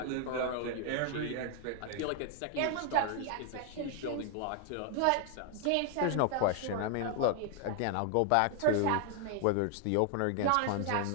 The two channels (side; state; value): both; different; correlation 0.00